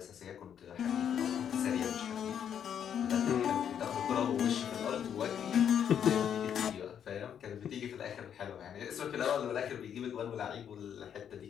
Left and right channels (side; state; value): right; quieter; 8.7 dB